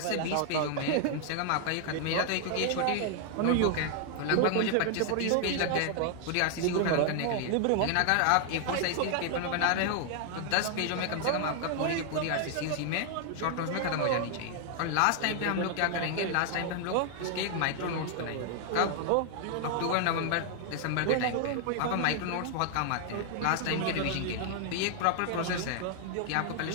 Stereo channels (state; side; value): different; both; correlation 0.00